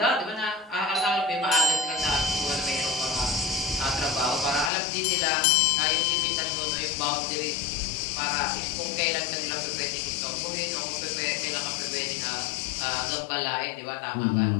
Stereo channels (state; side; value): drops out; right; at 4.7 s